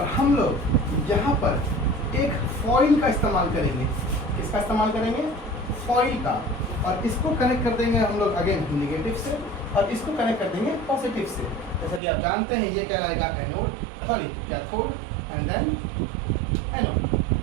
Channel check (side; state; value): left; drops out; at 12.0 s